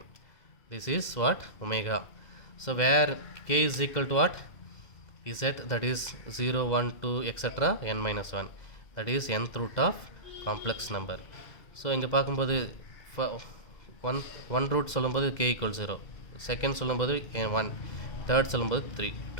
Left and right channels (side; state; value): right; late; 2.0 ms